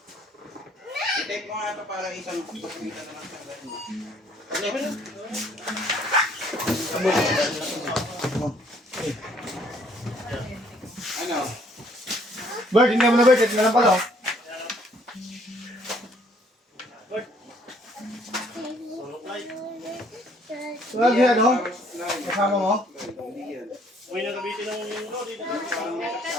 I-type mo nga ito para isang pagkita na lang sa ano? Bert, hindi mo na Bert. Ito na lang pala. Lagi ano? Kasama mo? Uy, nakabitin ng lori.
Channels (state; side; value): normal; both; correlation 0.63